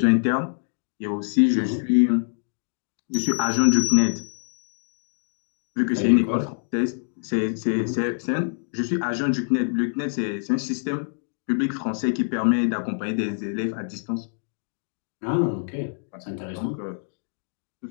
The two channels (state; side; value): silent; right; digital silence